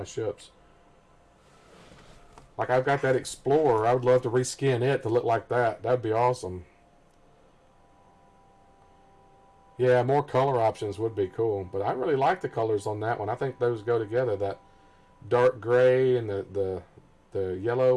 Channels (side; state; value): both; identical; correlation 1.00